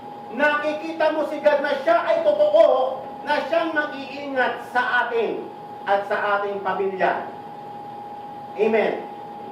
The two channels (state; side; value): identical; both; correlation 1.00